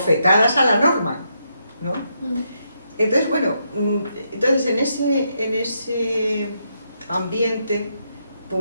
a la norma, ¿no? Entonces, bueno, entonces en ese ambiente,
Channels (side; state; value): both; inverted; correlation -0.80